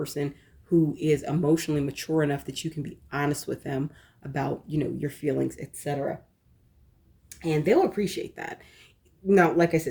who is emotionally mature enough that you can be honest with them about, your feelings, etc. And they'll appreciate that. Now, like I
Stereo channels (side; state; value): both; identical; correlation 1.00